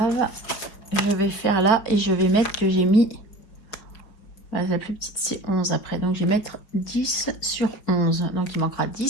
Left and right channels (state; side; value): late; right; 5.1 ms